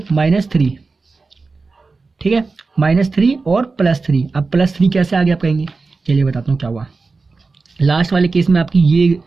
-3। ठीक है। -3 और +3। अब +3 कैसे आ गया आप कहेंगे, चलिए बताता हूँ क्या हुआ। लास्ट वाले केस में आपकी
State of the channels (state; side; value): quieter; left; 4.1 dB